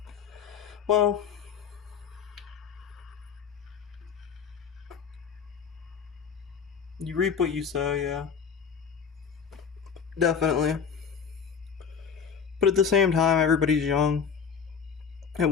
Well, you reap what you sow, yeah. Definitely. But at the same time, everybody's young. At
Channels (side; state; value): right; quieter; 6.7 dB